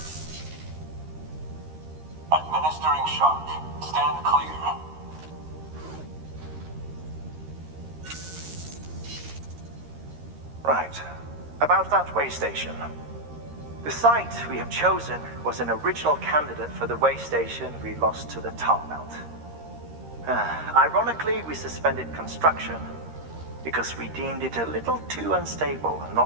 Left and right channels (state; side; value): late; left; 13 ms